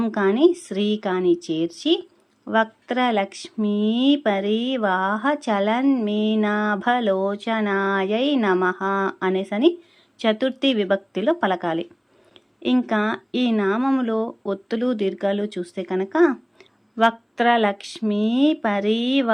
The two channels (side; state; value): both; identical; correlation 1.00